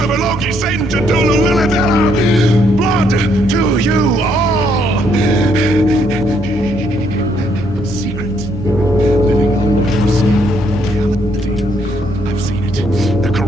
Loki, Satan, Cthulhu, Lilith, Hela. Blood to you all. Secret, living on reality. I've seen it. The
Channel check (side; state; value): both; normal; correlation 0.71